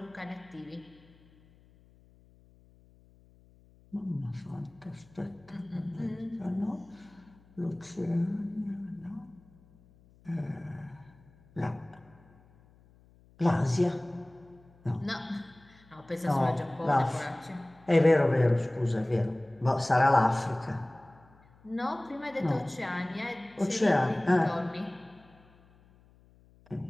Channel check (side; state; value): left; noise; hum, 28 dB below the sound